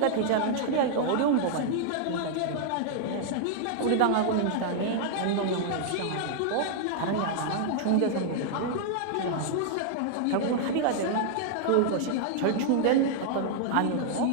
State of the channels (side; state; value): both; different; correlation -0.01